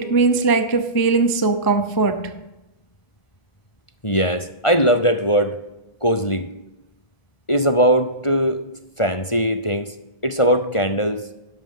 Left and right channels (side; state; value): right; late; 1.5 ms